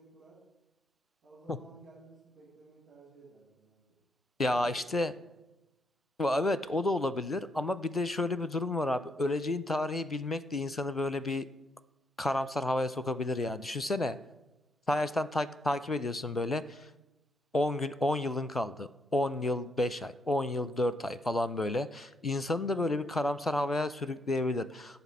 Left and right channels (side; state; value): both; normal; correlation 0.76